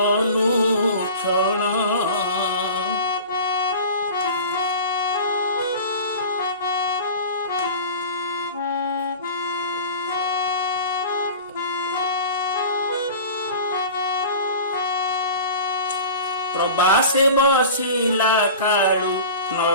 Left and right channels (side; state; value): both; inverted; correlation -0.37